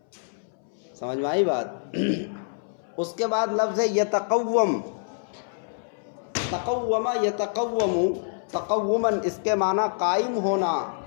سمجھ میں آئی بات؟ اس کے بعد لفظ یتقوم، تقوم یتقوم، تقوماً اس کے معنی قائم ہونا.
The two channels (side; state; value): right; silent; 61 dB below the other